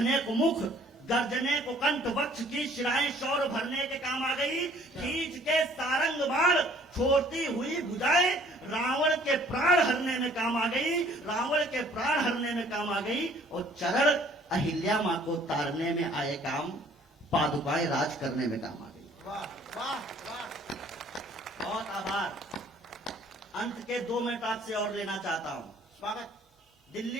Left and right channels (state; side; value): normal; both; correlation 0.57